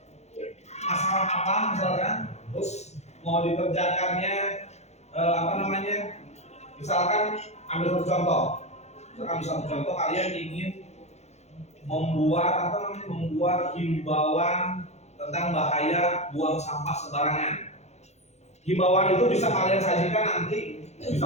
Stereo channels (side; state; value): right; late; 0.32 ms